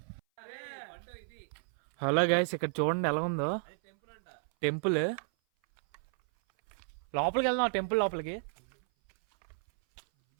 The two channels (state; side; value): silent; left; 56 dB below the other